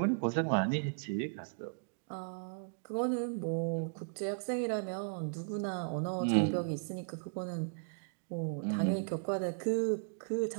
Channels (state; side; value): silent; left; digital silence